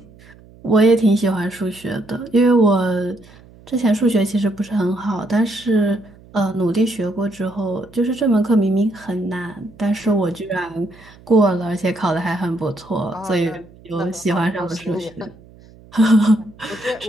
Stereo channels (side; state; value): right; noise; hum, 24 dB below the sound